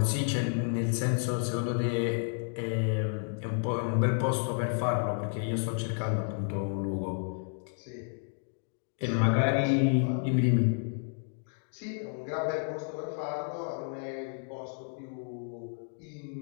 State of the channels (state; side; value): silent; right; 56 dB below the other